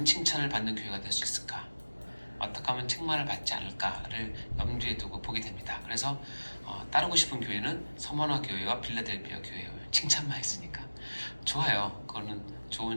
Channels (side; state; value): both; inverted; correlation -1.00